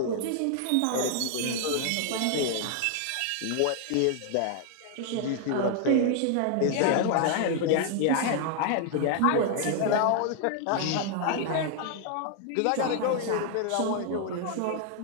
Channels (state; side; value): different; both; correlation 0.00